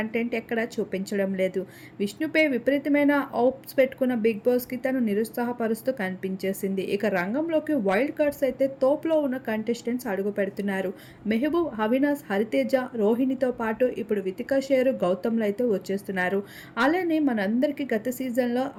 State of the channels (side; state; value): both; identical; correlation 1.00